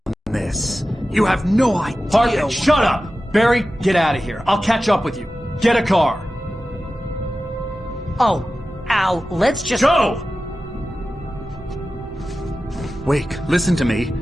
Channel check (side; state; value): both; normal; correlation 0.94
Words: this. You have no idea... Hartman, shut up! Barry, get out of here. I'll catch up with you. Get a car. Oh, Al, let's just... Go! Wake, listen to me.